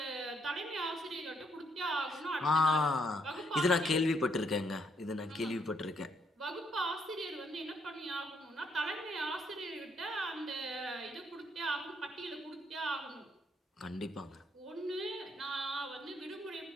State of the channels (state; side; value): normal; both; correlation 0.72